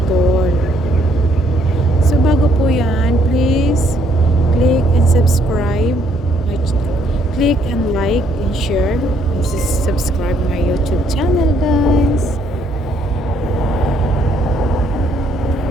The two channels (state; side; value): normal; both; correlation 0.68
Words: So bago po yan, please click and subscribe. Click and like and share. And subscribe my YouTube channel, guys.